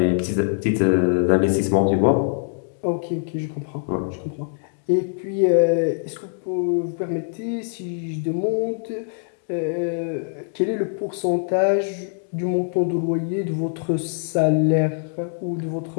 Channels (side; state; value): right; silent; digital silence